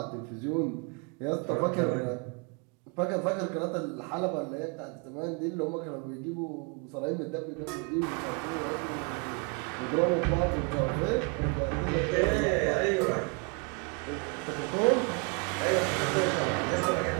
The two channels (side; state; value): left; quieter; 33.9 dB